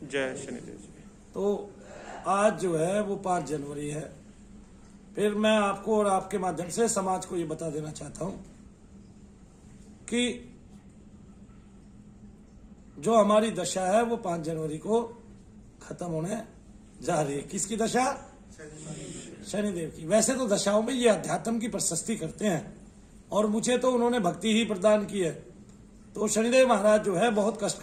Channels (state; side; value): identical; both; correlation 1.00